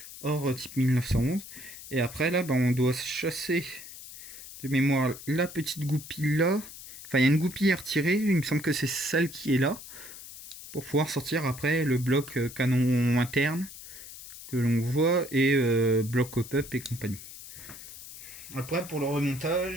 hors type 1911. Et après là, on doit chasser de mémoire la petite goupille là. Enfin, il y a une goupille à retirer, il me semble que c'est celle qui est là. Pour pouvoir sortir après le bloc canon interne que l'on voit et bloc hop-up et compagnie. Après, pour le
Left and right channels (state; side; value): noise; left; hiss, 14 dB below the sound